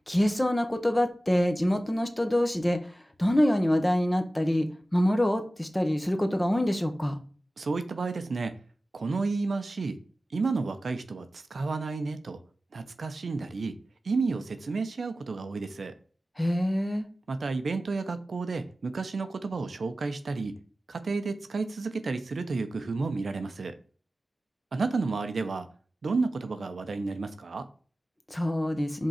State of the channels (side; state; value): both; normal; correlation 0.95